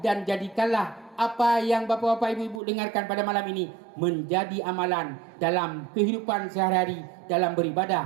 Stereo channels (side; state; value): left; drops out; at 2.6 s